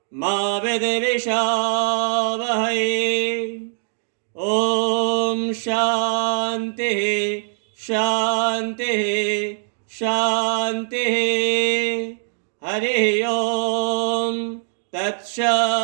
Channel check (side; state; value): left; silent; 64 dB below the other